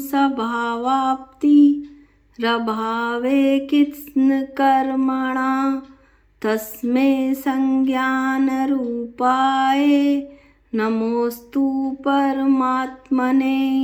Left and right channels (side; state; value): both; identical; correlation 1.00